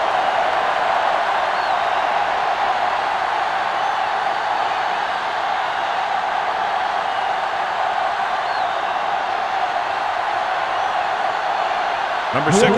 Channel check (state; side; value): identical; both; correlation 1.00